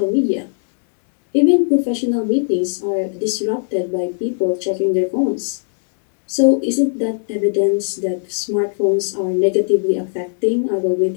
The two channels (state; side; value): silent; right; 67 dB below the other